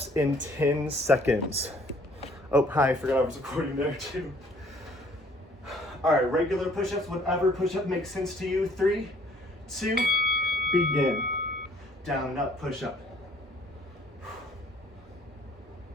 in 10 seconds. Oh, hi, I forgot I was recording there too. All right, regular push-ups, whatever push-up makes sense to you. 3, 2, begin. Down and up push-up.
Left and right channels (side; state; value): both; normal; correlation 0.59